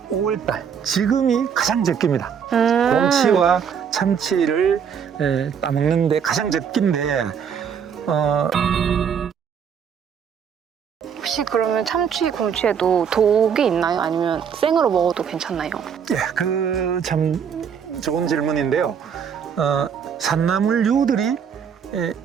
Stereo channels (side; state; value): left; quieter; 7.4 dB